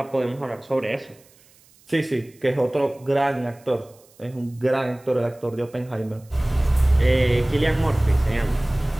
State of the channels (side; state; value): right; noise; hiss, 29 dB below the sound